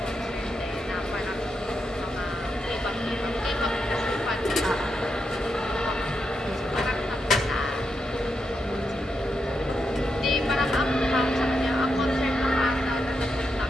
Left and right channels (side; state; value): both; normal; correlation 0.84